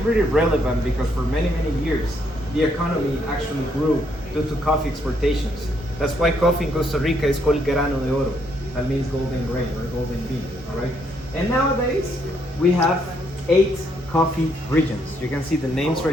relevant because for many, many years, the economy actually grew due to coffee exportations. That's why coffee in Costa Rica is called grano de oro. That means golden grain or golden bean, all right? And nowadays, we have 8 coffee regions. You can see the names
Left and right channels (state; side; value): normal; both; correlation 0.73